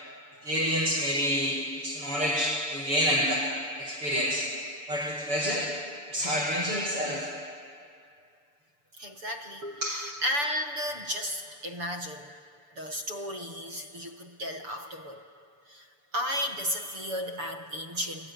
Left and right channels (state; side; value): late; left; 6.9 ms